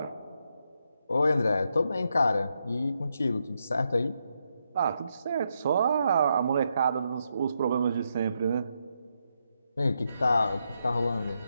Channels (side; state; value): both; inverted; correlation -0.82